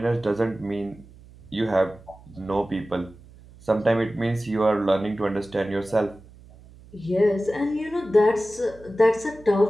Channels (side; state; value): right; noise; hum, 22 dB below the sound